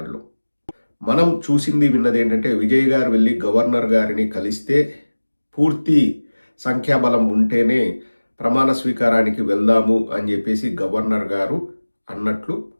మనం చూసింది విన్నది ఏంటంటే, విజయ్ గారు వెళ్ళి గవర్నర్ గారిని కలిస్తే పూర్తి సంఖ్యాబలం ఉంటేనే ప్రమాణ స్వీకారానికి వెళ్దాము అని చెప్పేసి గవర్నర్ గారు అన్నట్లు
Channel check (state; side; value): inverted; both; correlation -1.00